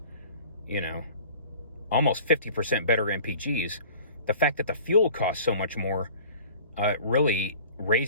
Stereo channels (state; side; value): inverted; both; correlation -0.45